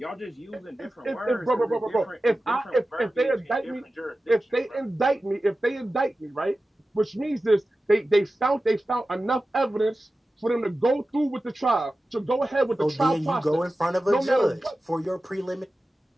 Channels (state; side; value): normal; both; correlation 0.94